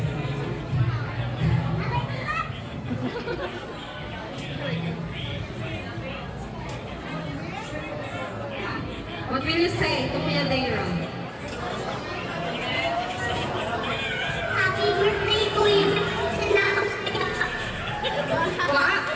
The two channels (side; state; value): both; identical; correlation 1.00